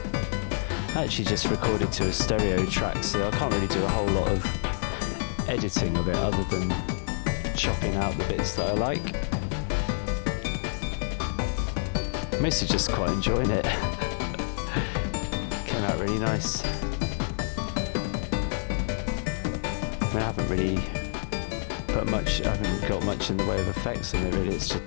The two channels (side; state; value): right; silent; digital silence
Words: actually just recorded to a stereo track, so I can't really do a whole lot of editing of it other than chopping out the bits that I like. I'm mostly just quite enjoying it. Came out really nice. I mean, I haven't really I haven't got much in the way of effects in it really, it's just...